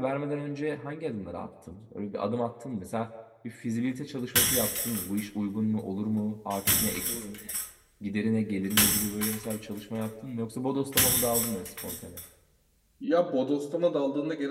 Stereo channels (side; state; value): both; identical; correlation 1.00